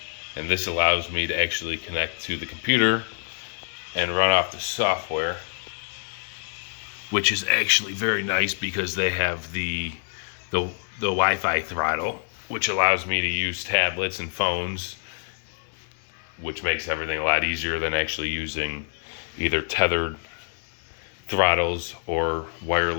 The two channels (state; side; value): silent; right; 58 dB below the other